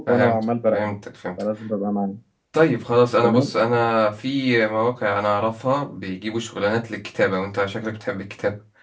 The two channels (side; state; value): both; identical; correlation 1.00